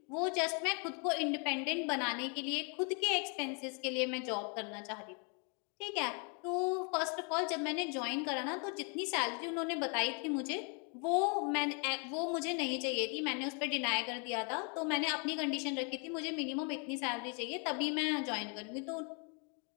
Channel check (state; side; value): quieter; right; 36.7 dB